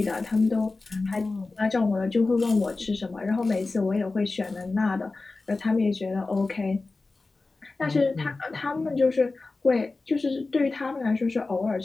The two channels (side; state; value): right; quieter; 3.6 dB